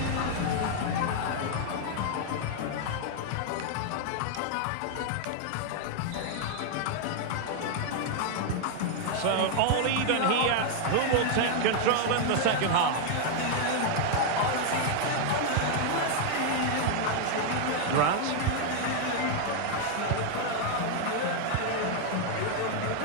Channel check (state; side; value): different; both; correlation 0.00